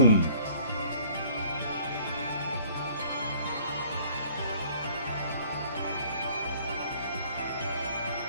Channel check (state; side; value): inverted; both; correlation -0.56